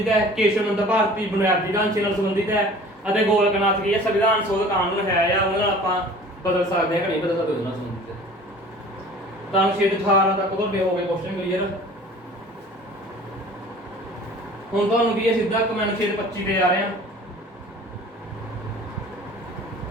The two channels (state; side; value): normal; both; correlation 0.46